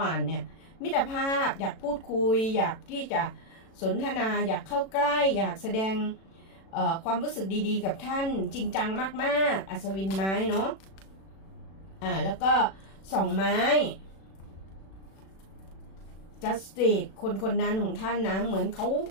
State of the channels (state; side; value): late; right; 36 ms